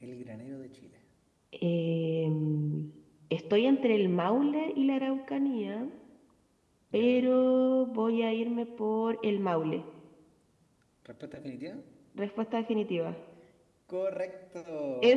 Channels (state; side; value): identical; both; correlation 1.00